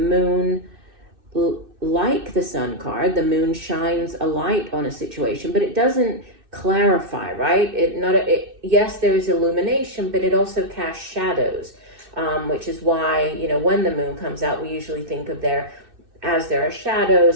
like the Sun card, the moon shines a light on a situation, but it doesn't clarify, right? Yes, there is illumination, but it also casts shadows, which is why, when the moon comes out, we usually think of there are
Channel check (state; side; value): late; left; 2.6 ms